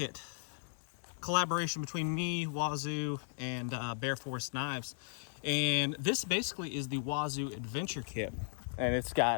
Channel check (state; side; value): silent; right; digital silence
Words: Collaboration between me, Wazoo, and Bear Forest Knives. And this basically is the Wazoo Adventure Kit. And it's